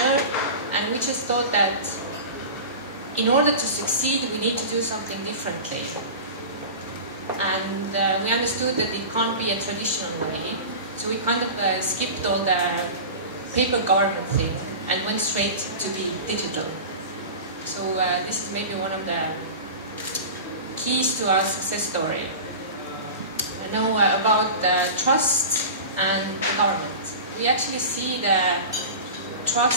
and we just thought that in order to succeed, we need to do something differently. And we understood that it can't be a traditional way, so we kind of skipped all the paper government thing and went straight to the digital. So this is maybe one of the keys to our success story. I know about trust and the government. We actually see the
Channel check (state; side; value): inverted; both; correlation -0.32